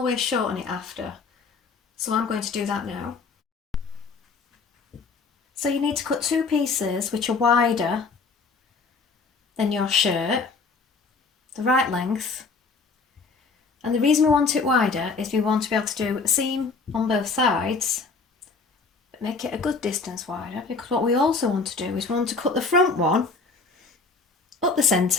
shorten it after. So I'm going to do that now. So you need to cut 2 pieces which are wider than your shirt, the right length. And the reason we want it wider is we want to be able to do a seam on both sides, but make it a good distance wider, because what we also want to do is we want to cut the front one up the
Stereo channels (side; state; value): right; quieter; 4.4 dB